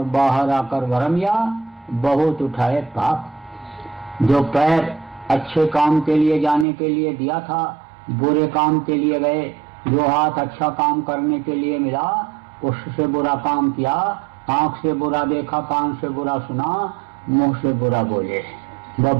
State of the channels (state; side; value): drops out; left; at 6.7 s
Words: बाहर आकर भरमिया, बहुत उठाए पाप। जो पैर अच्छे काम के लिए जाने के लिए दिया था, बुरे काम के लिए गए। जो हाथ अच्छा काम करने के लिए मिला, उससे बुरा काम किया। आंख से बुरा देखा, कान से बुरा सुना, मुंह से बुरा बोले, वह